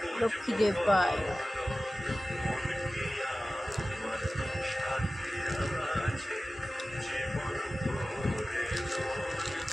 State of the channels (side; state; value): both; normal; correlation 0.96